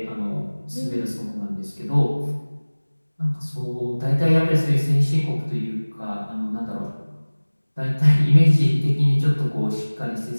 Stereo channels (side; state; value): both; inverted; correlation -1.00